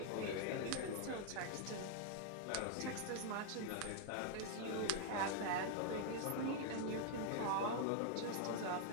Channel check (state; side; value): different; both; correlation 0.00